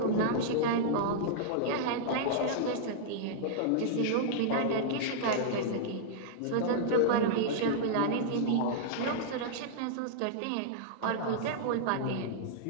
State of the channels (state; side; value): different; both; correlation -0.02